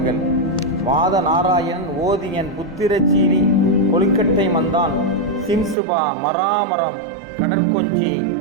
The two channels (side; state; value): left; drops out; at 5.8 s